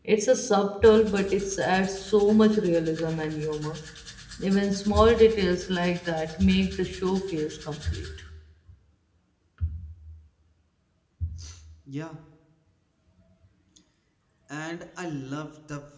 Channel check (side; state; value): both; identical; correlation 1.00